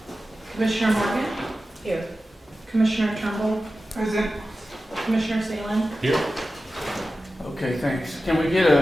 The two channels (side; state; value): both; normal; correlation 0.94